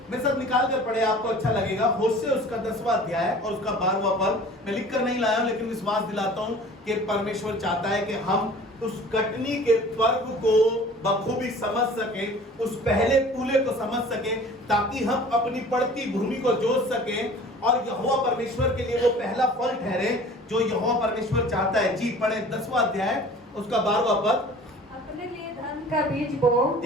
मैं सब निकाल कर पढ़े, आपको अच्छा लगेगा। होशे उसका 10वां अध्याय और उसका 12वां पद मैं लिख कर नहीं लाया हूं, लेकिन विश्वास दिलाता हूं कि परमेश्वर चाहता है कि हम उस कटनी के पर्व को बखूबी समझ सकें, उस पहले फूले को समझ सकें, ताकि हम अपनी पड़ती भूमि को जोत सकें और यहोवा परमेश्वर के लिए वो पहला फल ठहरे जो यहोवा परमेश्वर चाहता है। जी पढ़े 10वां अध्याय उसका 12वां पद। अपने लिए धर्म का बीज बो,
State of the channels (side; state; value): both; normal; correlation 0.45